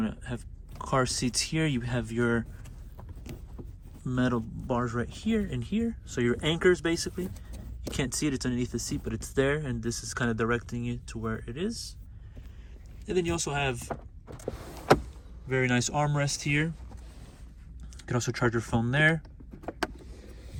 to have car seats here, you have your metal bars right here and here. So your anchors, basically. You can't see it, it's underneath the seat, but it's there, and this is kind of directing you to where it is. And then you also have very nice armrest here. You can also charge your phone there.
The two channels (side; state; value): both; identical; correlation 1.00